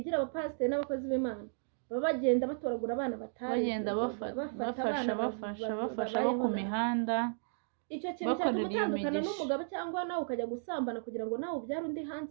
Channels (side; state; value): left; silent; digital silence